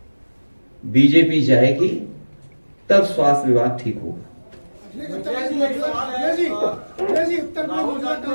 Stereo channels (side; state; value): both; inverted; correlation -1.00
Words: बीजेपी जाएगी तब स्वास्थ्य विभाग ठीक होगा। उत्तर